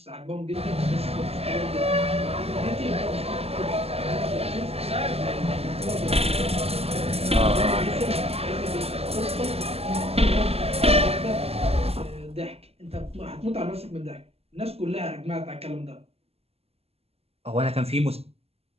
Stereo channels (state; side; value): late; left; 0.29 ms